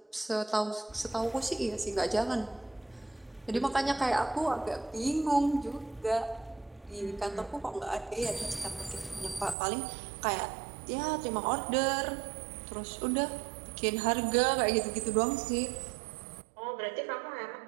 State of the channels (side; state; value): left; drops out; at 9.6 s